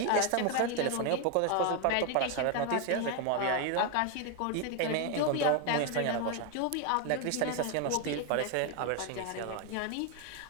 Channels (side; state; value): both; different; correlation 0.01